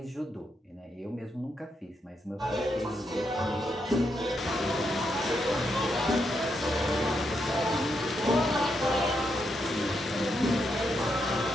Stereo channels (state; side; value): normal; both; correlation 0.81